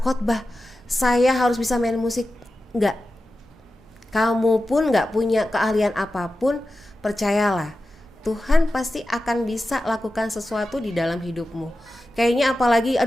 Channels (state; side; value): normal; both; correlation 0.93